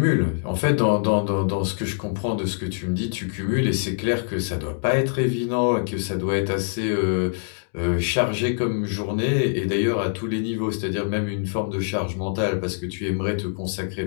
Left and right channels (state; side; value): silent; right; digital silence